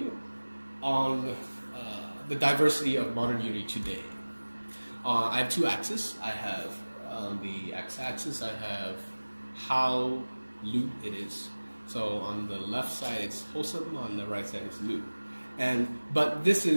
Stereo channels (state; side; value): inverted; both; correlation -1.00